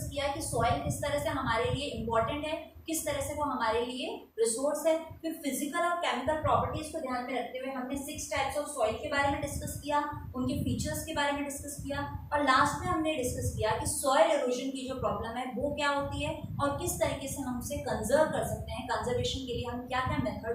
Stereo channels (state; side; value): identical; both; correlation 1.00